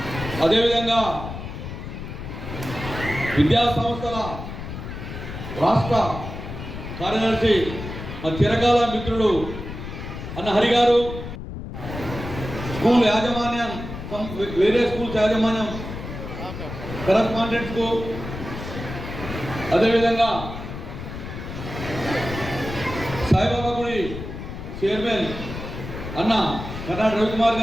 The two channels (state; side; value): noise; left; rumble, 9 dB below the sound